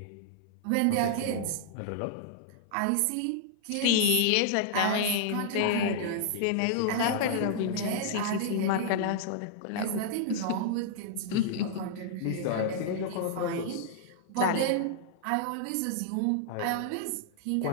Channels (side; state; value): both; different; correlation -0.01